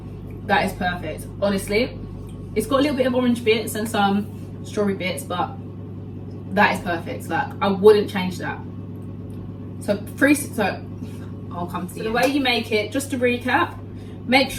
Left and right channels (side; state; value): both; identical; correlation 1.00